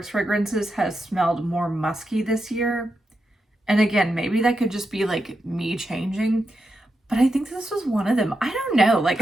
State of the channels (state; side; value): normal; both; correlation 0.86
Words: fragrances has smelled more musky this year. And again, maybe that could just be like me changing, but I think this was one of them. I don't know,